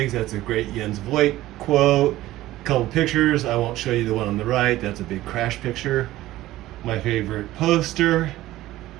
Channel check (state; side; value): quieter; left; 15.9 dB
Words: That's a great Jens Voigt quote. A couple pictures. I won't show you the one on the right. That's a big crash picture. My favorite poster.